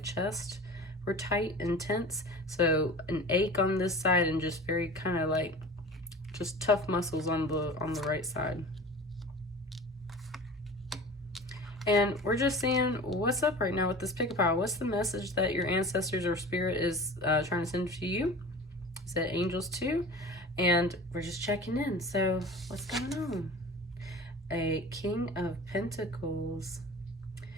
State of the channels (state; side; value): normal; both; correlation 0.37